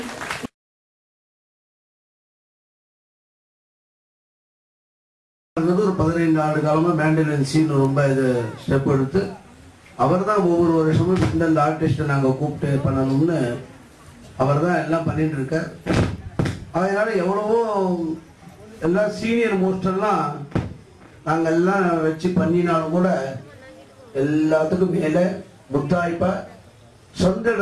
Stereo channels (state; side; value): identical; both; correlation 1.00